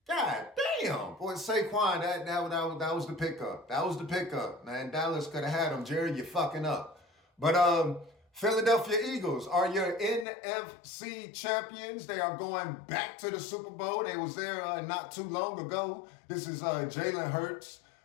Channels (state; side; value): drops out; right; at 10.2 s